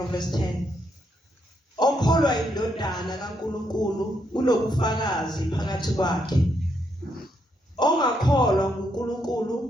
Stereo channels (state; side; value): normal; both; correlation 0.77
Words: verse 10 Okholwa indodana kaNkulunkulu unobufakazi phakathi kwakhe. Ongakholwa